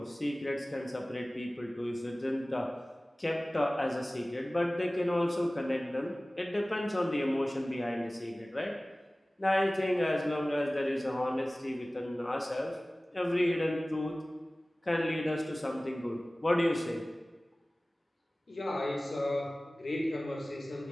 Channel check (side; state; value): both; normal; correlation 0.98